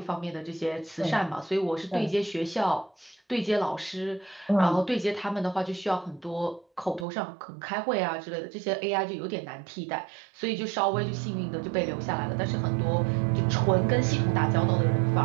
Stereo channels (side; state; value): left; drops out; at 7.1 s